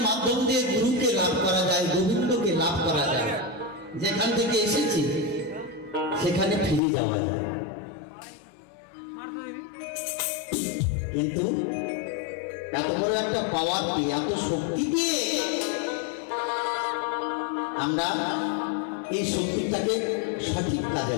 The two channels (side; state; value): right; drops out; at 6.8 s